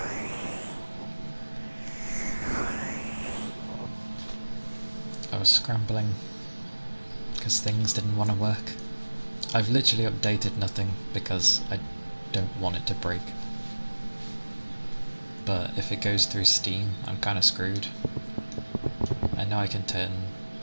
I was scrambling because things didn't want to work. I've literally updated nothing because I don't want it to break. But if it goes through Steam, I'm kind of screwed. I know I can turn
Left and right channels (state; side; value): inverted; both; correlation -1.00